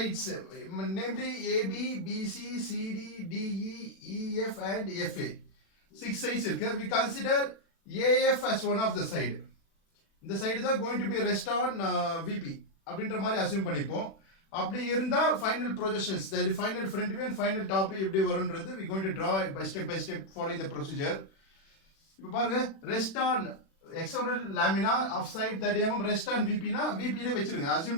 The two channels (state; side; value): late; right; 36 ms